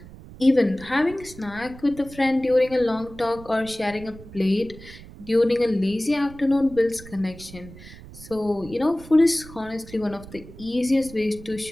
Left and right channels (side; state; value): right; noise; rumble, 17 dB below the sound